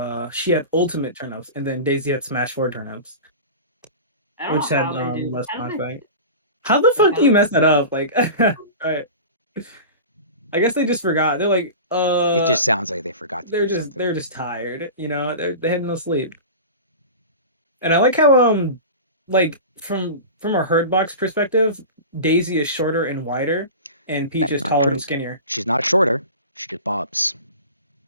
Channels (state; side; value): inverted; both; correlation -0.32